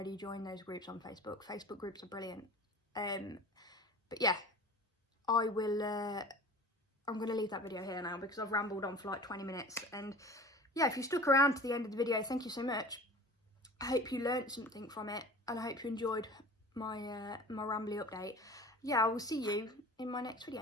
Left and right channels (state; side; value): normal; both; correlation 0.40